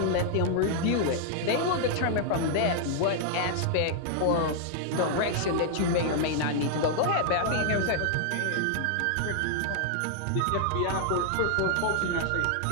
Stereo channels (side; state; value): both; different; correlation -0.01